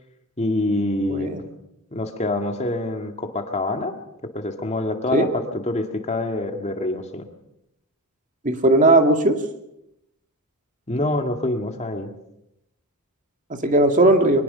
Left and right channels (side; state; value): both; normal; correlation 0.24